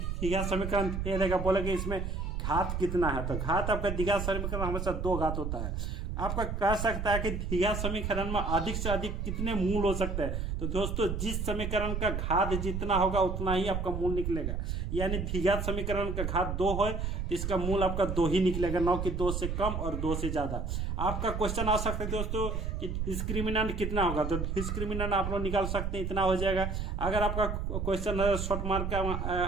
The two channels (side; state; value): right; noise; rumble, 2 dB below the sound